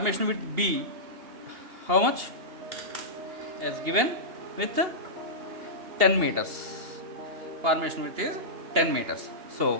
width B, how much? As given with 10 meters. Formation width is 10 meters.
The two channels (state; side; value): late; left; 2.8 ms